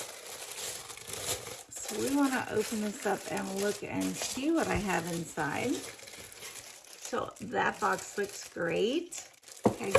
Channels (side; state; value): both; identical; correlation 1.00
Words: So we want to open this up and look and see what I have inside. So that box looks great. Okay,